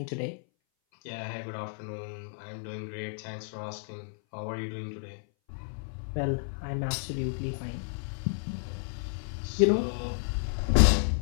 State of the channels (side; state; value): right; silent; 57 dB below the other